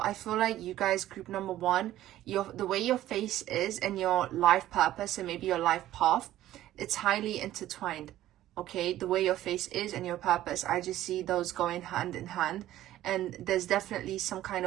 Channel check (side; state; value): left; quieter; 13.8 dB